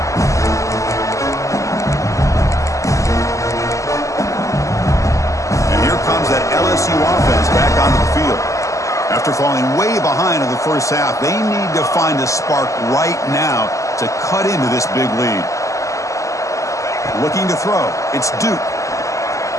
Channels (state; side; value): late; right; 0.16 ms